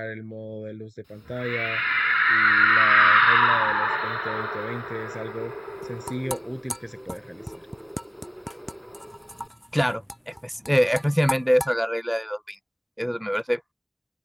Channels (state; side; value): identical; both; correlation 1.00